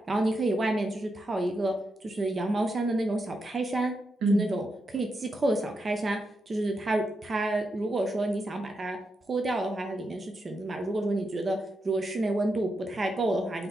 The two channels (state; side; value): normal; both; correlation 0.85